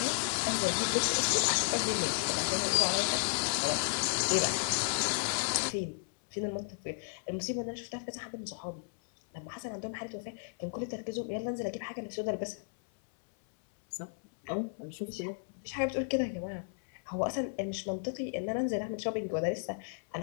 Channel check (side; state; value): right; silent; 55 dB below the other